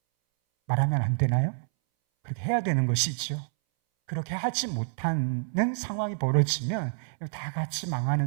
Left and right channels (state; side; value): silent; left; 59 dB below the other